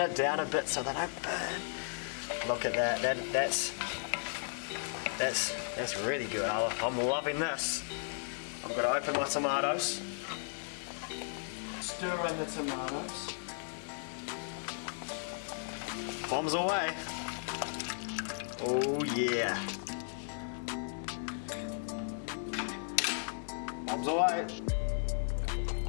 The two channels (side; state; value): right; silent; 54 dB below the other